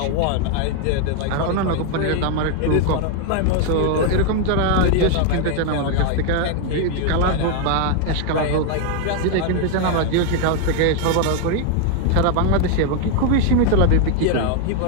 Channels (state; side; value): different; both; correlation 0.00